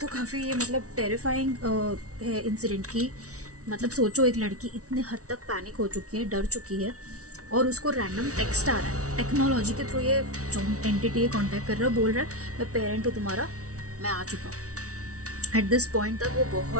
काफ़ी ये मतलब टेरिफाइंग है इंसिडेंट की। मतलब सोचो, एक लड़की इतने हद तक पैनिक हो चुकी है, डर चुकी है, और उसको रैंडम टेक्स्ट आ रहा है टेक्नोलॉजी के थ्रू। ये जो एंटिटी है कॉन्टैक्ट कर रहा है, बोल रहा है मैं पेरेंट हूँ तुम्हारा, मैं आ चुका हूँ। एट दिस पॉइंट तक वो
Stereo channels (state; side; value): late; left; 0.66 ms